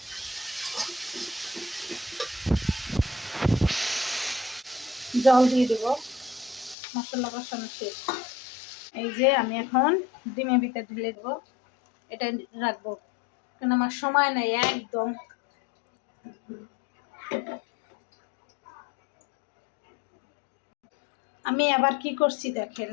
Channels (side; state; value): right; drops out; at 6.8 s